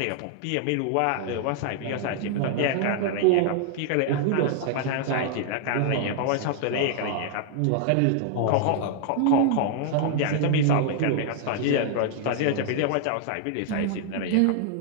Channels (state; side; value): different; both; correlation 0.00